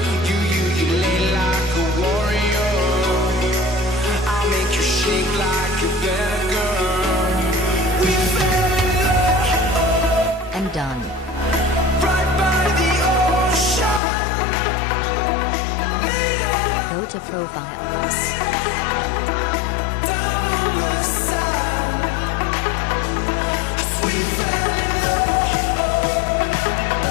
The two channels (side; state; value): right; drops out; at 14.0 s